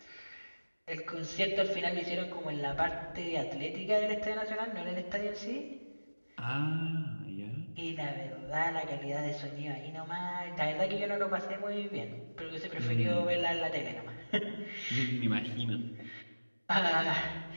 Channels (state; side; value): inverted; both; correlation -1.00